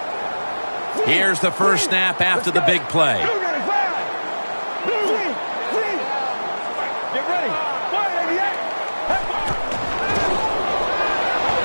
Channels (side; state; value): both; inverted; correlation -1.00